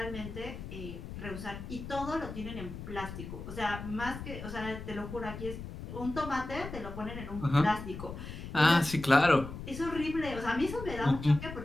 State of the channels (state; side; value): noise; left; rumble, 9 dB below the sound